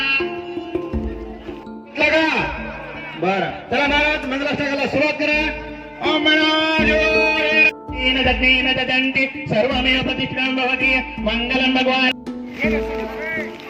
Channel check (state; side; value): identical; both; correlation 1.00